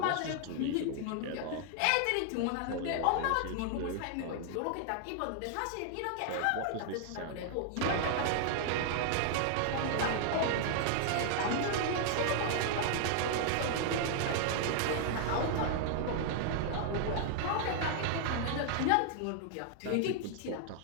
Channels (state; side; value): different; both; correlation 0.00